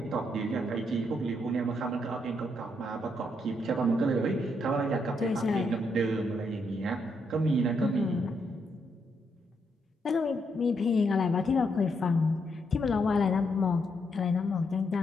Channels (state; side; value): normal; both; correlation 0.77